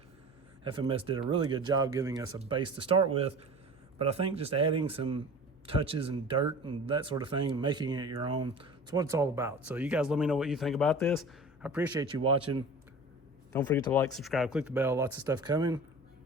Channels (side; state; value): both; normal; correlation 0.38